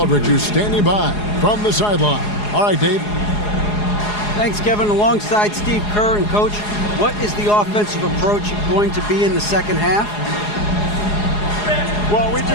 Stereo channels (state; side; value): late; right; 4.8 ms